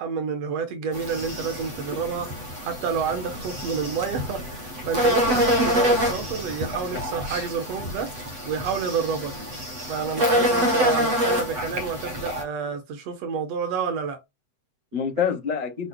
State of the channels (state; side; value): late; left; 8.0 ms